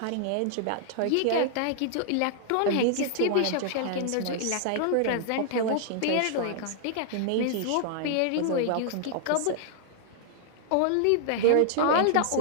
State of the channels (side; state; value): both; different; correlation 0.00